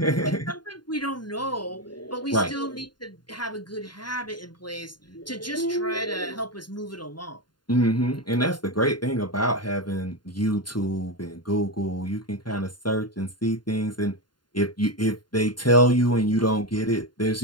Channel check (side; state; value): right; late; 0.71 ms